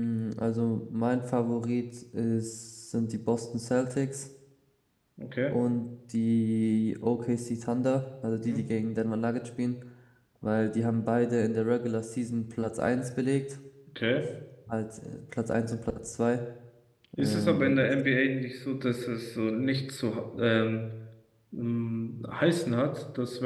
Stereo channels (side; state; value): both; identical; correlation 1.00